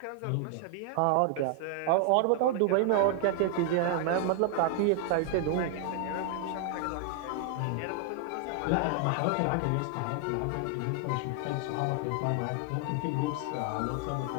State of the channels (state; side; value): different; both; correlation 0.00